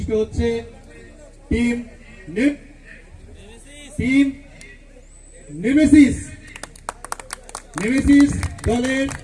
হচ্ছে টিম নেমেসিস দলের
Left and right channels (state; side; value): identical; both; correlation 1.00